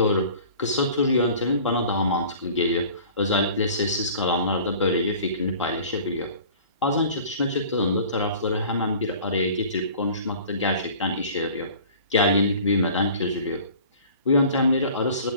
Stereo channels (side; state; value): both; inverted; correlation -0.46